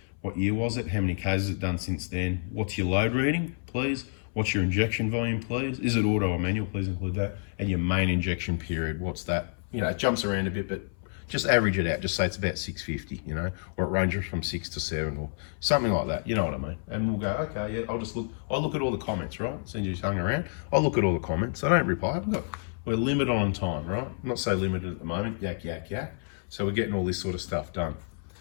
What year was it? How many Ks has it done since then? What's your load reading, please? What's your injection volume, please? Is it auto or manual? Please include that. And your main injection period, what's that? You know, it jumps around a bit, but just average it out. Just say it's about 650, you know, or it ranges from 6 to 7 or something like that. You know what I mean? And we'll go, okay, yeah, I'll look at all the comments, right? Since you hung around, I'll look at all the comments. I don't reply. Look, we're limited on time, right? I'm not so limited at the moment. Yak, yak, yak. So we're getting all this sort of stuff done.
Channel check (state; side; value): silent; right; 59 dB below the other